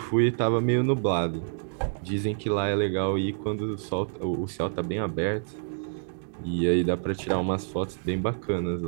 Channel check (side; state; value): left; silent; digital silence